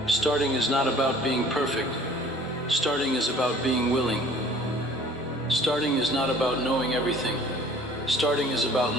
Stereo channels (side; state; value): both; normal; correlation 0.51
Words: Starting is not about being perfect. Starting is about being willing. Starting is not about knowing everything. Starting is about